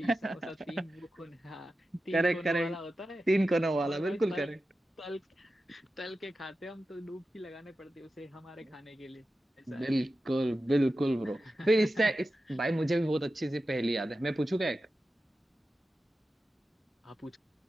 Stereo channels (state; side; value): normal; both; correlation 0.93